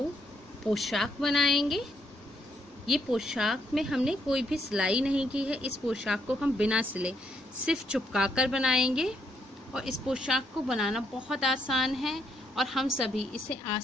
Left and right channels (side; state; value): both; normal; correlation 0.74